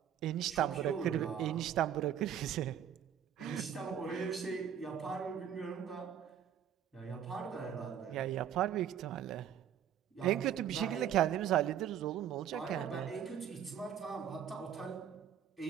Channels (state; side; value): quieter; left; 9.4 dB